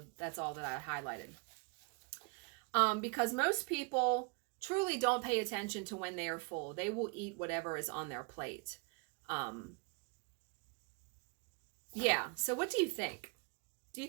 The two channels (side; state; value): left; quieter; 32.3 dB